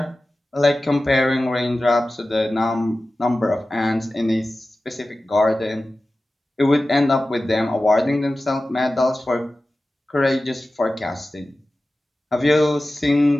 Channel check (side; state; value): both; normal; correlation 0.95